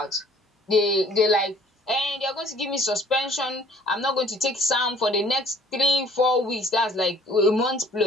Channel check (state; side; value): normal; both; correlation 0.56